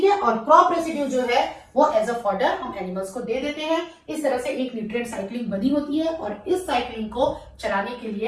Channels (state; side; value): identical; both; correlation 1.00